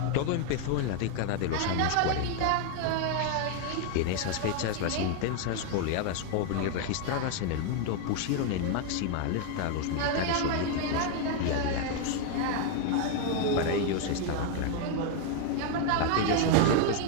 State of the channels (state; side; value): different; both; correlation 0.01